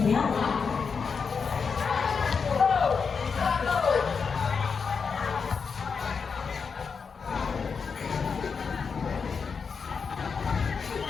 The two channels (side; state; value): right; quieter; 5.6 dB